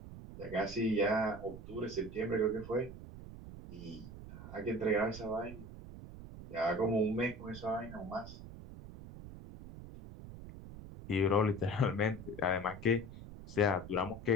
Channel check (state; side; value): noise; right; rumble, 13 dB below the sound